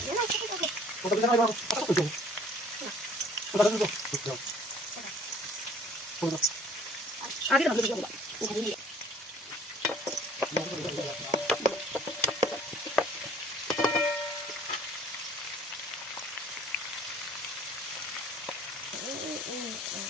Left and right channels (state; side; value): normal; both; correlation 0.54